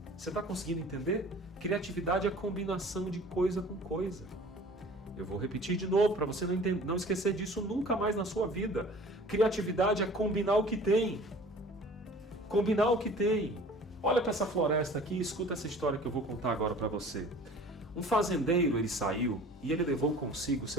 Você está conseguindo entender? Criatividade é a combinação de coisa com coisa. Eu vou repetir de novo para você não esquecer disso nunca mais na sua vida. Criatividade é combinar o que tem. Combinar o que tem. Olha para essa floresta aqui e escuta essa história que eu vou contar agora para você. Um fazendeiro, ele saiu e ele levou consigo o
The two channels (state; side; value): normal; both; correlation 0.46